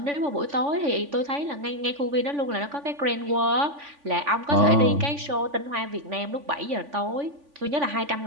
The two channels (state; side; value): late; left; 3.5 ms